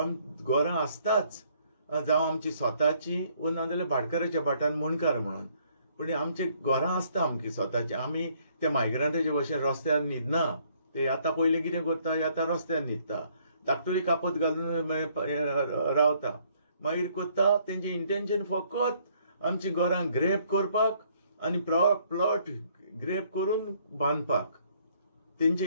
घरां आसताच, जावं आमची स्वताची वा नाजाल्यार भाटकाराच्या भाटान मुणकार म्हणून, पूण आमची घरां आसता आमची स्वताची. आमी ते मायग्रंटाचे भशेन रस्त्यार न्हिदना. ते आतां पयलीं कितें करता, आतां रस्त्यार न्हिदता, धाकटुली कापत घालून रावता. मागीर कोत्ता तेंचे इंटेंशन फकत आमची घरां ग्रेप करपाक आनी प्लॉट ग्रेप करून बांदपाक, तेंचे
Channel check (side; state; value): both; inverted; correlation -0.65